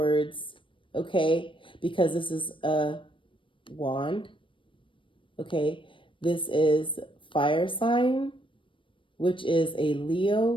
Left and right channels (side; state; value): right; late; 0.25 ms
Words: okay? Because this is a wand, okay? This is fire sign, which is a